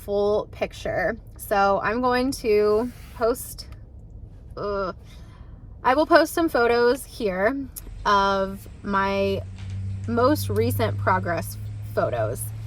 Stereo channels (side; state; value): both; identical; correlation 1.00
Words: picture. So I'm going to post, I will post some photos here of my most recent progress photos.